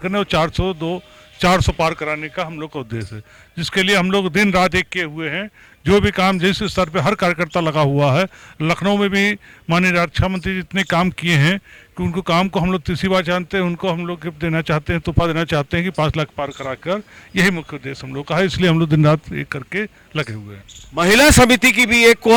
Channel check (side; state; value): both; identical; correlation 1.00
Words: और 400 पार कराने का हम लोग का उद्देश्य है, जिसके लिए हम लोग दिन रात एक किए हुए हैं। जो भी काम जिस स्तर पे हर कार्यकर्ता लगा हुआ है, लखनऊ में भी माननीय रक्षा मंत्री जितने काम किए हैं कि उनको काम को हम लोग तीसरी बार जानते हैं, उनको हम लोग गिफ्ट देना चाहते हैं, तोहफा देना चाहते हैं कि 5 लाख पार कराकर, यही मुख्य उद्देश्य हम लोग का है। इसलिए हम लोग दिन रात एक करके लगे हुए हैं। महिला समिति की भी एक